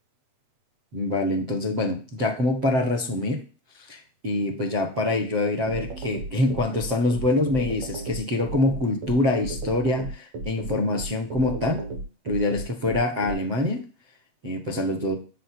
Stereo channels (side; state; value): left; late; 7.7 ms